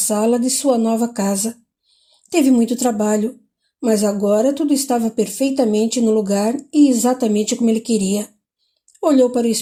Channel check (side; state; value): both; identical; correlation 1.00